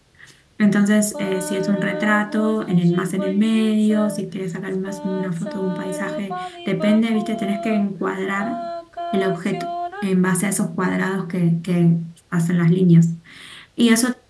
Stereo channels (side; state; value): both; identical; correlation 1.00